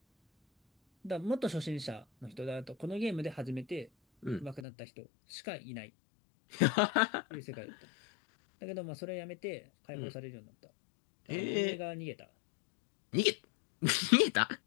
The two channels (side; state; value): right; drops out; at 4.7 s